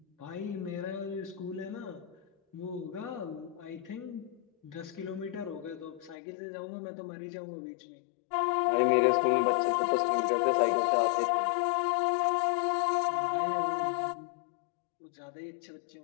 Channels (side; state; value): right; drops out; at 6.2 s